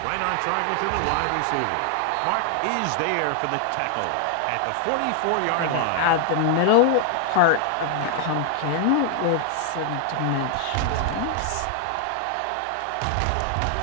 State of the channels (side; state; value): both; different; correlation 0.00